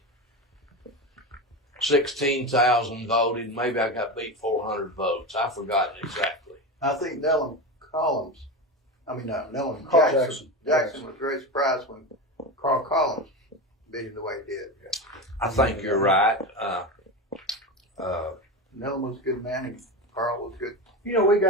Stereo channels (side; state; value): both; normal; correlation 0.21